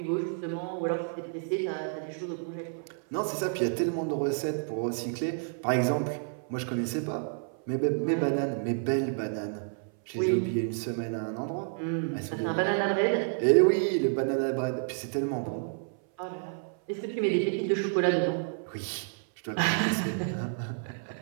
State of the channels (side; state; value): left; silent; 58 dB below the other